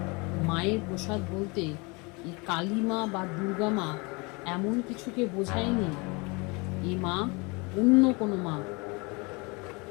মায়ের প্রসাদ বলতে এই কালী মা বা দুর্গা মা এমন কিছুকে বোঝায়নি, এই মা অন্য কোনো মা।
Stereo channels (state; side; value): quieter; right; 28.2 dB